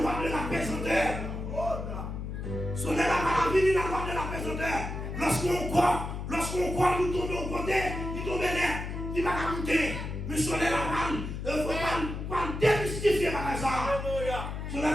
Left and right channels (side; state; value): left; noise; hum, 6 dB below the sound